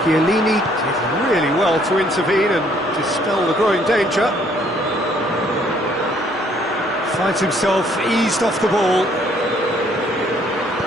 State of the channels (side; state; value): both; normal; correlation 0.64